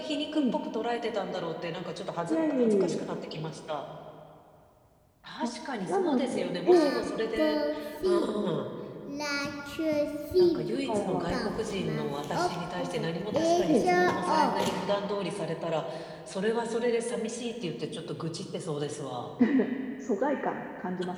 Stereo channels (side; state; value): both; identical; correlation 1.00